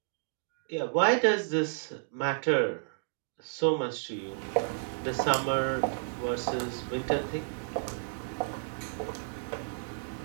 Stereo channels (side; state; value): left; silent; digital silence